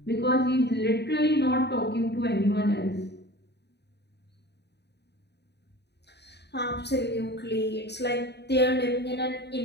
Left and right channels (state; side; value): late; right; 0.49 ms